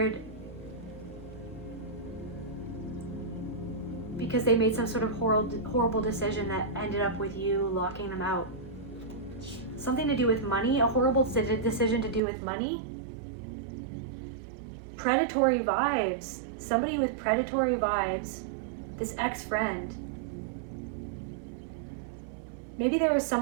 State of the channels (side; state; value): left; drops out; at 12.2 s